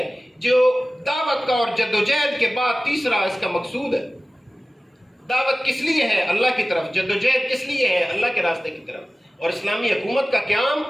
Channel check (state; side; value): normal; both; correlation 0.97